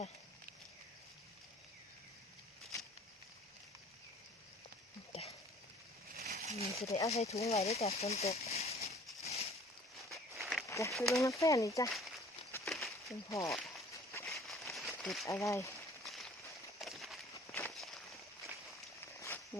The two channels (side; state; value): both; normal; correlation 0.51